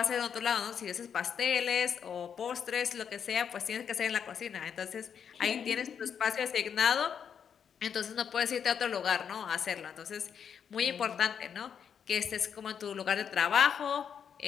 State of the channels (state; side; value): quieter; right; 7.6 dB